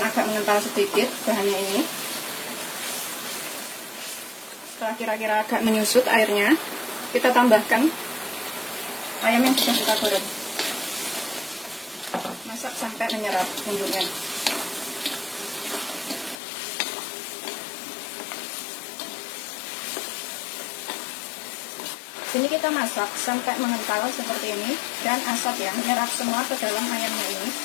agak mengental sedikit bahannya ini. Setelah kira-kira agak menyusut airnya, kita tambahkan ayam yang sudah kita goreng. Masak sampai menyerap bumbunya. Sini kita masak sampai mengental seperti ini dan asap ya menyerap semua ke dalam ayamnya ini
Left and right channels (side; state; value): right; drops out; at 16.4 s